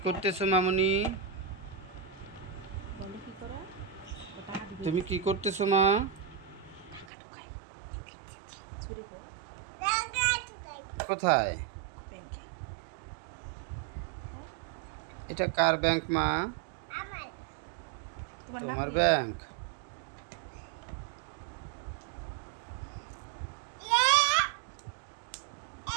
করতেছো মামুনি? তুমি কি করতেছো মা? কোথায়? এটা কার ব্যাংক মা? তোমার ব্যাংক?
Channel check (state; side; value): drops out; left; at 7.1 s